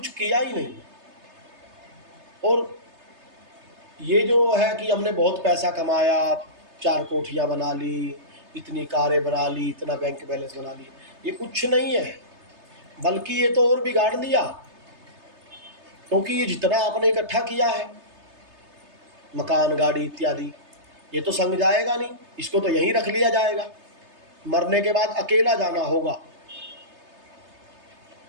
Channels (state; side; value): late; left; 3.3 ms